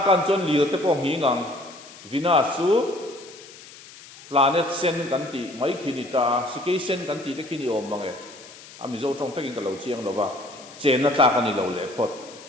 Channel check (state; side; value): noise; left; hiss, 19 dB below the sound